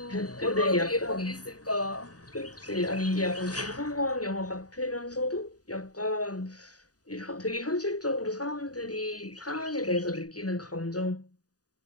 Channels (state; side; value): late; right; 0.68 ms